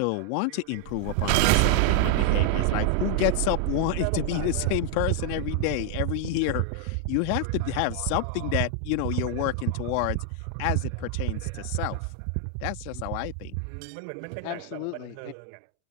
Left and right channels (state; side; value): different; both; correlation 0.00